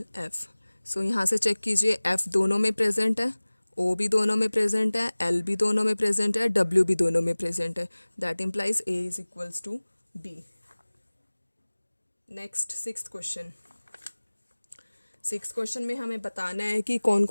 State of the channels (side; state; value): both; inverted; correlation -1.00